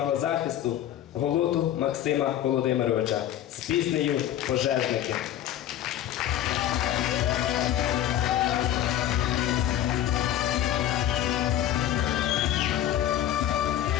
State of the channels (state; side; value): quieter; right; 11.7 dB